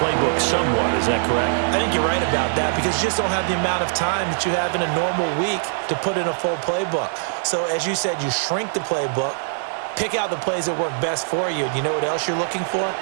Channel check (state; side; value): silent; left; 64 dB below the other